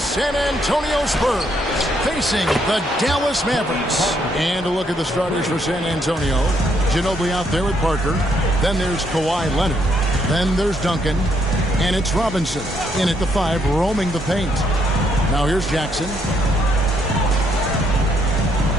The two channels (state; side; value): normal; both; correlation 0.72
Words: Antonio Spurs facing the Dallas Mavericks. And a look at the starters for San Antonio. Ginobili out there with Parker. Then there's Kawhi Leonard. Then there's Duncan. And it's Robinson in at the 5, roaming the paint. Now here's Jackson.